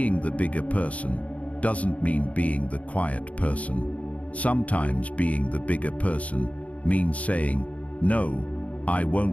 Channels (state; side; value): late; right; 0.067 ms